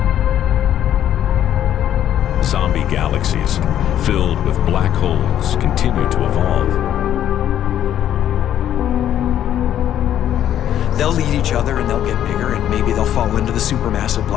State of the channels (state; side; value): quieter; right; 10.9 dB